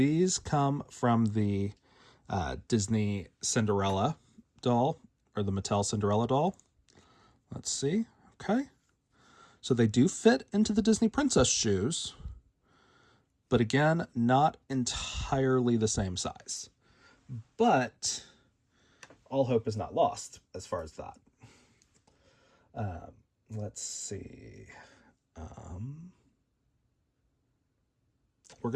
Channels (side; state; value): both; identical; correlation 1.00